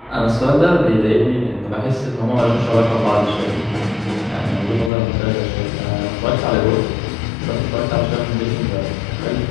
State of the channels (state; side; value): drops out; right; at 4.9 s